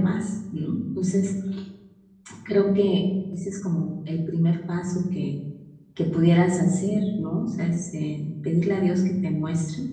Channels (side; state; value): both; identical; correlation 1.00